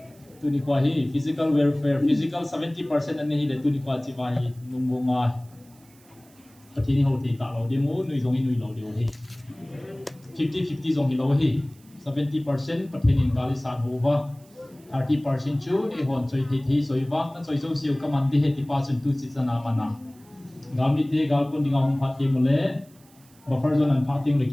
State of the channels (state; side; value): noise; right; hiss, 28 dB below the sound